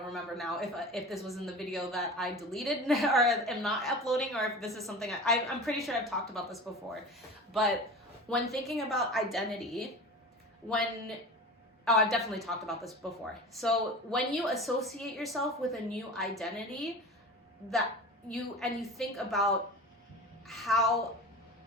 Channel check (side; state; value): both; normal; correlation 0.34